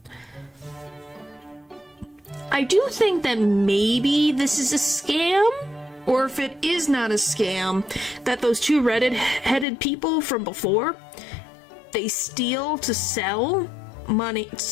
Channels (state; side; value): drops out; right; at 9.7 s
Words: I do think that maybe this is a scam, or if it is not a scam, that those two red-headed people from before, they steal to sell money,